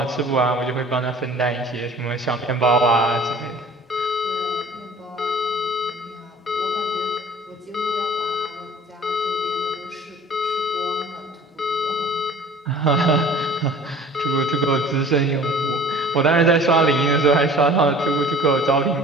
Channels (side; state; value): both; normal; correlation 0.47